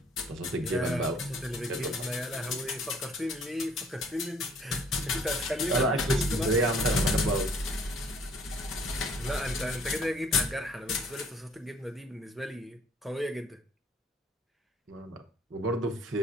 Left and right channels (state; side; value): normal; both; correlation 0.58